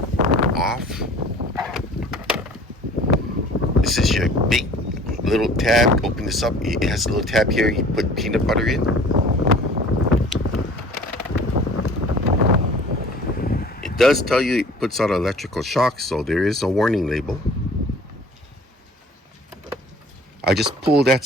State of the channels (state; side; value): normal; both; correlation 0.48